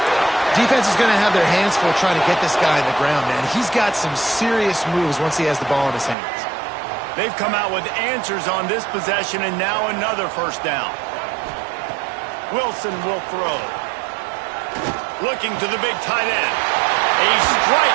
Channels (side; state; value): left; drops out; at 6.2 s